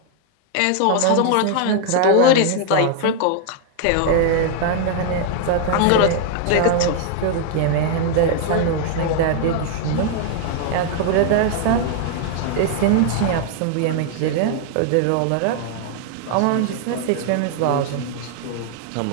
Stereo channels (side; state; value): both; different; correlation 0.00